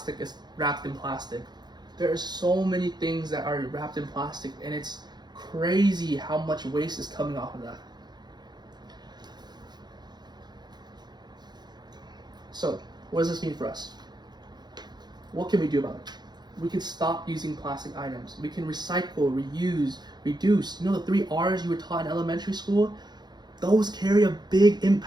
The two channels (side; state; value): left; late; 0.21 ms